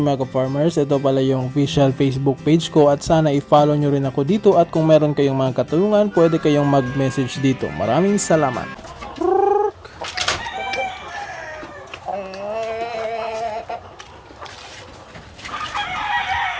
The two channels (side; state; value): both; identical; correlation 1.00